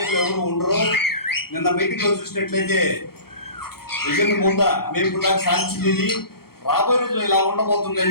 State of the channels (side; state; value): right; late; 0.94 ms